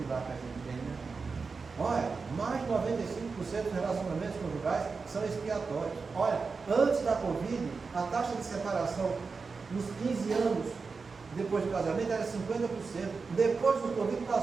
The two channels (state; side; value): quieter; left; 4.7 dB